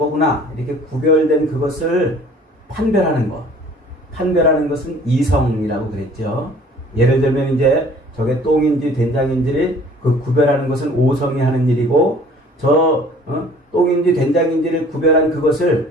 이렇게 구별된 그것을 판별하는 것은 이성이라고 그랬죠. 예를 들면 이제 저게 똥인지 된장인지를 그 구별하는 것은 오성이 하는 일이고 똥인지 된장인지를 구별한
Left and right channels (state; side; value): normal; both; correlation 0.52